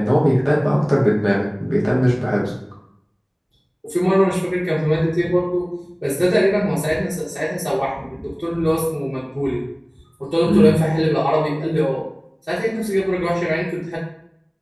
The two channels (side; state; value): both; identical; correlation 1.00